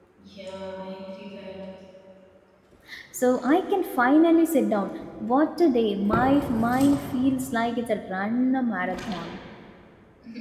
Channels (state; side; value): identical; both; correlation 1.00